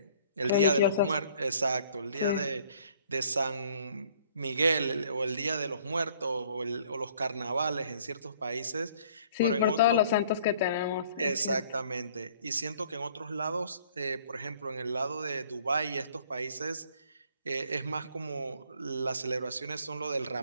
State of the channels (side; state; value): both; inverted; correlation -0.58